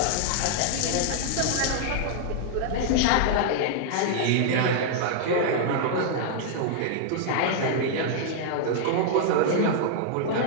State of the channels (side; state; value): both; different; correlation -0.01